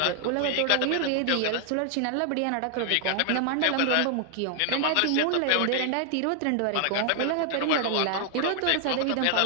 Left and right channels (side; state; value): both; different; correlation 0.00